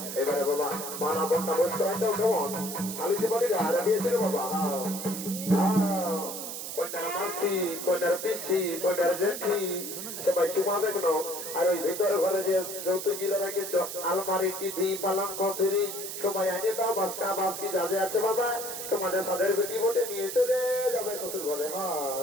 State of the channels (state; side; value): noise; right; hiss, 7 dB below the sound